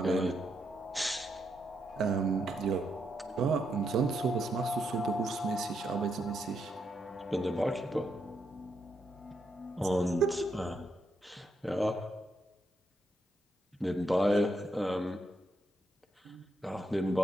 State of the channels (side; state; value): both; normal; correlation 0.80